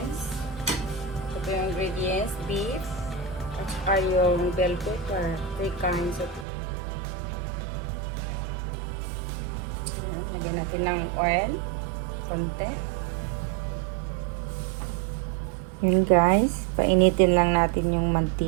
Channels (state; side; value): drops out; left; at 6.5 s